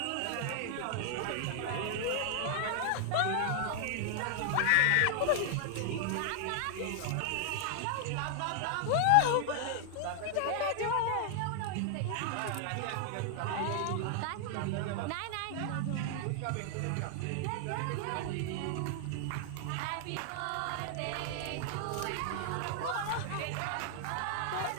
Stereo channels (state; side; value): different; both; correlation 0.00